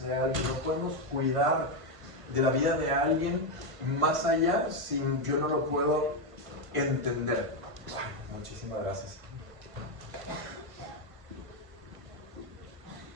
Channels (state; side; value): late; left; 1.5 ms